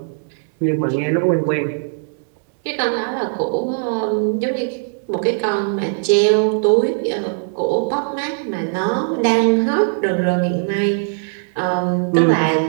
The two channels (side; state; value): left; silent; digital silence